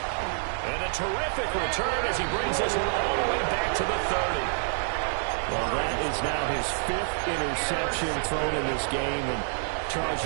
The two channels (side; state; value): left; silent; digital silence